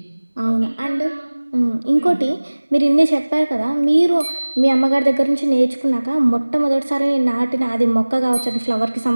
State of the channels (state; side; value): inverted; both; correlation -1.00